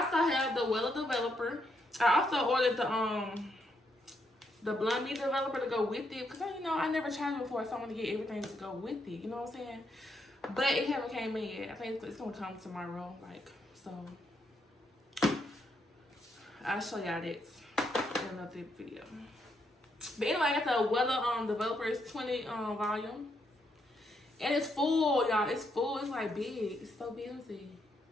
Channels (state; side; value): normal; both; correlation 0.78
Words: also have the Wella Developer. I also ordered the Blonde Me Developer to go with it, because you know I never tried it before, so I want to get everything to go with it. You know what I'm saying? But it haven't came in yet. I think it's gonna come tomorrow. Like, so I'll show y'all that in another video. But anyway, I got the Wella Developer. It's 20 volume, and it's full, y'all. It's full. It's like big. It's so busy.